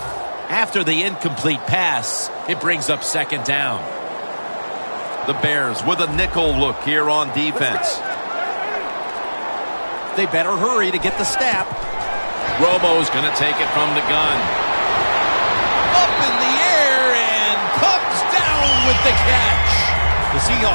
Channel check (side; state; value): both; inverted; correlation -1.00